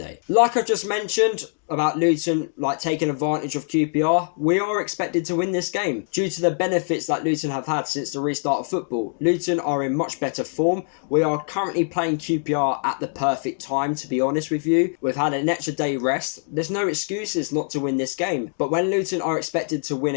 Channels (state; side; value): silent; right; 63 dB below the other